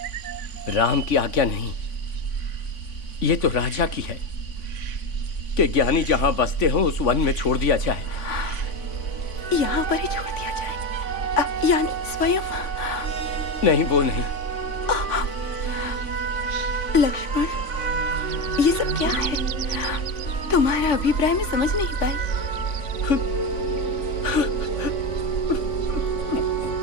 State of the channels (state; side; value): late; right; 3.5 ms